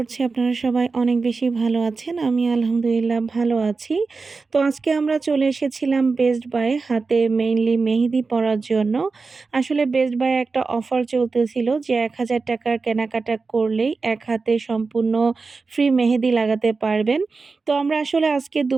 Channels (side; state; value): left; quieter; 4.3 dB